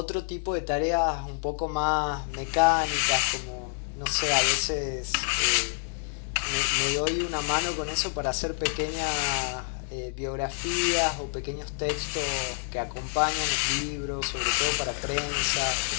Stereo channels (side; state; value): right; silent; 60 dB below the other